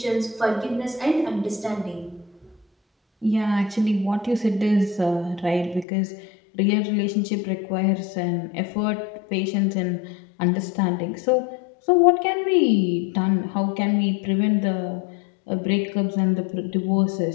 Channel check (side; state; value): right; drops out; at 5.9 s